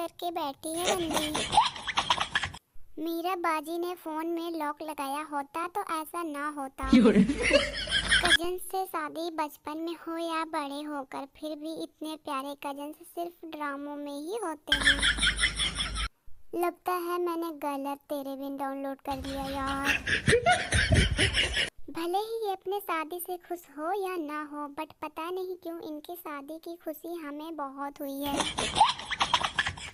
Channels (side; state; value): both; identical; correlation 1.00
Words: बैठी है बंदी। मीरा बाजी ने फोन में लॉक लगाया होता तो ऐसा ना होता। कजन से शादी बचपन में हो या बड़े होकर, फिर भी इतने प्यारे कजन सिर्फ ड्रामों में ही होते हैं। लगता है मैंने गलत तेरे बिन डाउनलोड कर लिया यार। भले ही ये अपने शादी से खुश हो या ना हो, बट पता नहीं क्यों इनकी शादी की खुशी हमें बहुत हुई है।